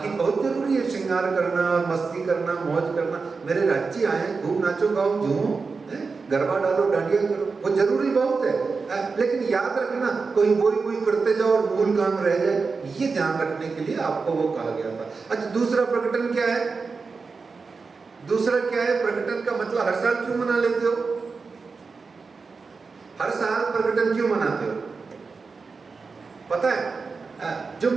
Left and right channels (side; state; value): left; quieter; 4.6 dB